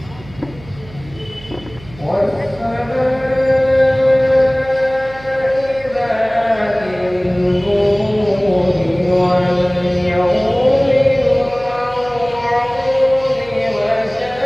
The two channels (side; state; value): right; noise; hum, 20 dB below the sound